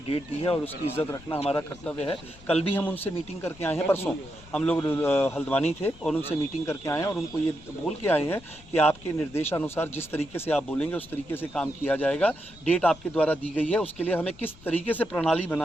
डेट दी है और उसकी इज्जत रखना हमारा कर्तव्य है। कल भी हम उनसे मीटिंग करके आए हैं, परसों हम लोग हल्द्वानी थे और उनसे मीटिंग करके आए हैं, और उनको ये बोल के आए हैं कि आपके निर्देशानुसार जिस तरीके से आप बोलेंगे उस तरीके से काम किया जाएगा। डेट आपके द्वारा दी गई है, उसके लिए हमें किस तरीके से प्रणाली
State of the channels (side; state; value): left; noise; rumble, 21 dB below the sound